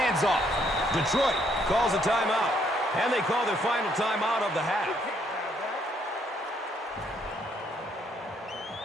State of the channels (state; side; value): normal; both; correlation 0.69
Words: off. Detroit calls a timeout. And they call their final timeout of the half.